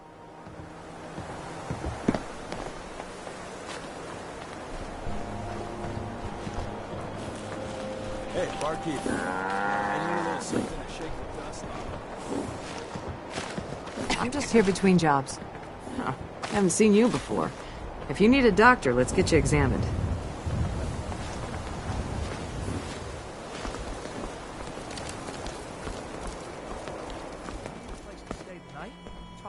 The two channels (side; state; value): both; identical; correlation 1.00